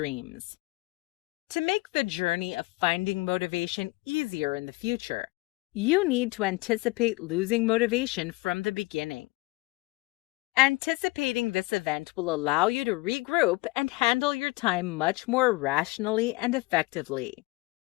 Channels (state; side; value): quieter; right; 23.0 dB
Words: To make the journey of finding motivation easier in the future, you need to anticipate losing motivation from the beginning. Anticipating this event will allow you to regroup and handle your time much more rationally and effectively.